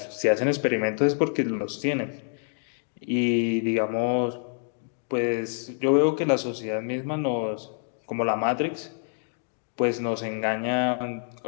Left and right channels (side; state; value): right; silent; 60 dB below the other